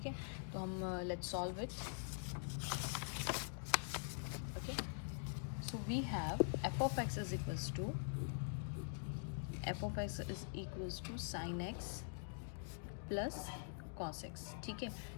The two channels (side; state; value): right; silent; digital silence